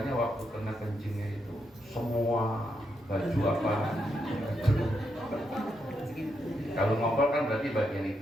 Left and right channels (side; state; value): both; normal; correlation 0.81